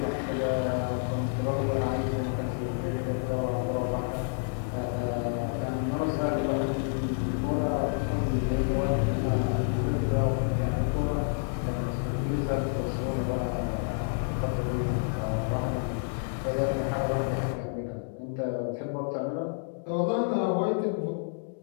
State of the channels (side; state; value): right; silent; digital silence